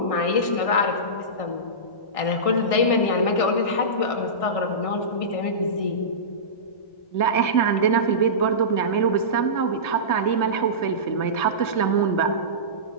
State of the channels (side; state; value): right; late; 1.6 ms